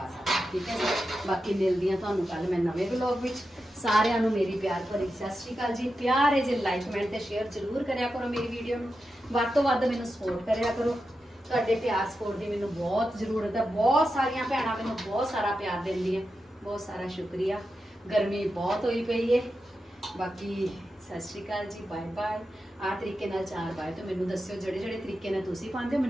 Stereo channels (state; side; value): normal; both; correlation 0.89